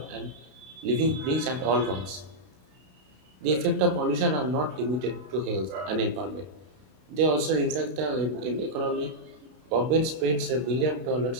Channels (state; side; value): late; left; 32 ms